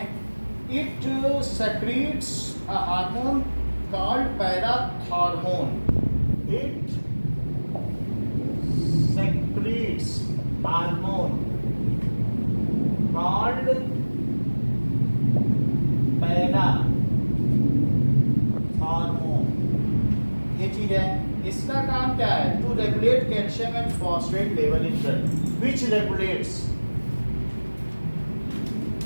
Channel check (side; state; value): both; inverted; correlation -1.00